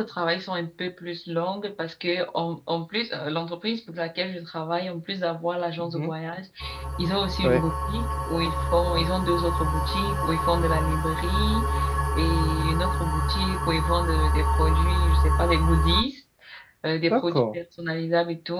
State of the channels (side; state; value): both; identical; correlation 1.00